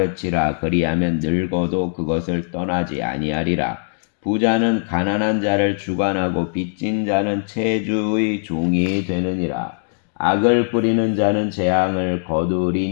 그리하면 늙어도 그것을 떠나지 아니하리라. 부자는 가난한 자를 주관하고 빚진 자는 체주의 종이 되느니라. 악을 뿌리는 자는 재앙을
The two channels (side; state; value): right; silent; digital silence